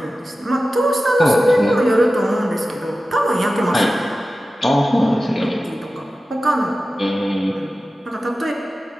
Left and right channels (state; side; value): normal; both; correlation 0.94